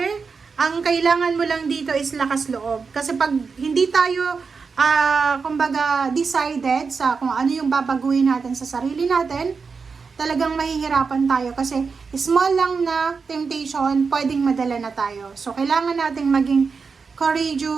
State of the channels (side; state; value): left; quieter; 5.1 dB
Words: ang kailangan mo lang dito is lakas loob. Kasi pag hindi tayo, kumbaga, decided sa kung ano yung babaguhin natin sa sarili natin, talagang mahihirapan tayo. Kasi small lang na temptation, pwedeng madala na tayo. So, kailangan nating maging